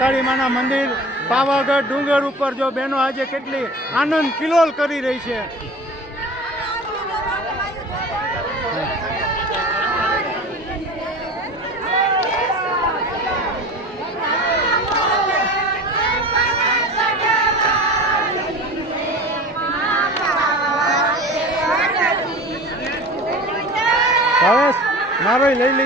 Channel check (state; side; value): normal; both; correlation 0.37